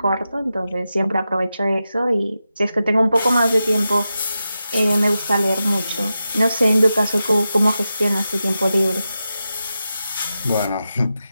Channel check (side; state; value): both; inverted; correlation -0.91